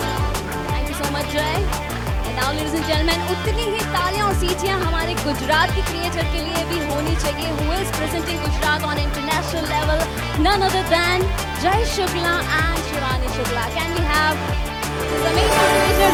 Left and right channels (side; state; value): both; identical; correlation 1.00